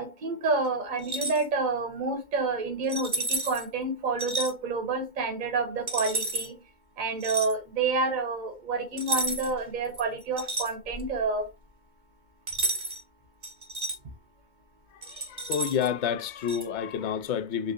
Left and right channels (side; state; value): left; late; 2.2 ms